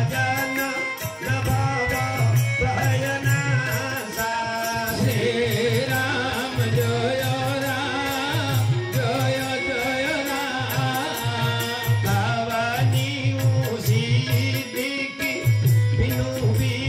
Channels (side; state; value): both; identical; correlation 1.00